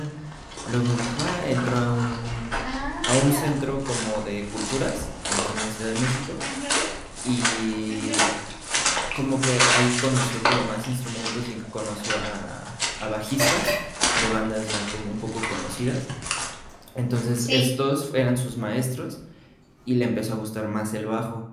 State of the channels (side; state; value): both; identical; correlation 1.00